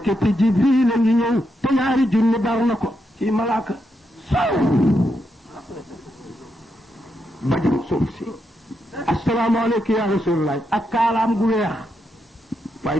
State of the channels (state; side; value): normal; both; correlation 0.83